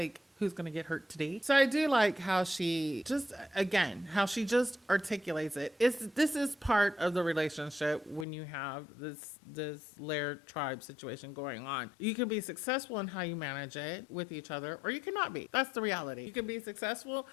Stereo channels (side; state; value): right; drops out; at 8.2 s